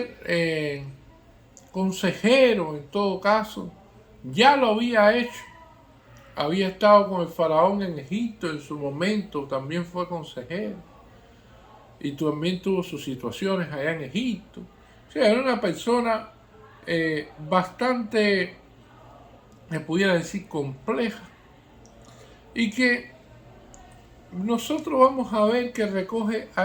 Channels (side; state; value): both; identical; correlation 1.00